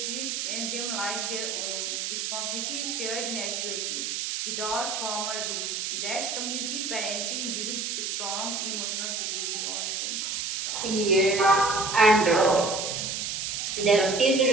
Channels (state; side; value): noise; right; hiss, 2 dB below the sound